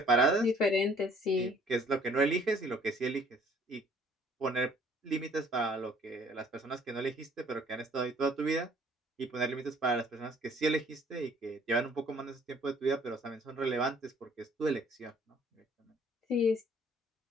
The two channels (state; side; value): normal; both; correlation 0.58